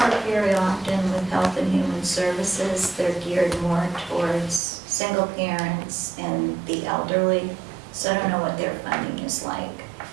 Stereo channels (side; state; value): left; drops out; at 4.6 s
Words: very often with Health and Human Services. They're geared more towards single parents and the elderly, so I don't know what their funding is like.